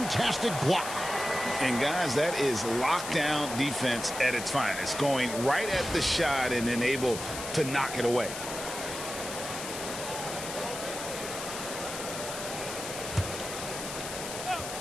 block. And guys, that is lockdown defense at its finest. Going right at the shot and then able to knock it away.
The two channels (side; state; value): left; noise; hiss, 7 dB below the sound